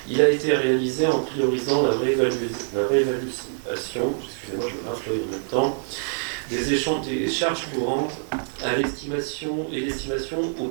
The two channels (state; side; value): silent; left; 62 dB below the other